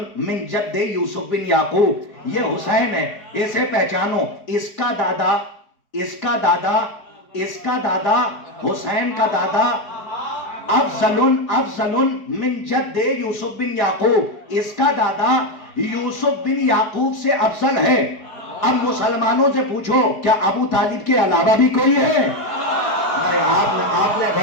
من جد یوسف بن یعقوب, یہ حسین ہے, اسے پہچانو. اس کا دادا, اس کا دادا, اس کا دادا, حسین کا دادا افضل من جد یوسف بن یعقوب, اس کا دادا یوسف بن یعقوب سے افضل ہے. اب مسلمانوں سے پوچھو, کیا ابو طالب کے علاوہ بھی کوئی ہے؟ آپ نے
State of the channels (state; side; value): late; right; 4.7 ms